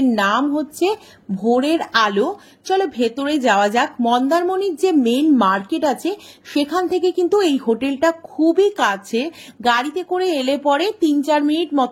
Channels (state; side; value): identical; both; correlation 1.00